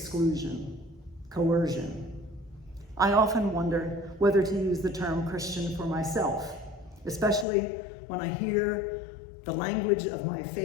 coercion. I often wonder whether to use the term Christian for myself, especially when I hear the language of my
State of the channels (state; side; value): drops out; right; at 7.5 s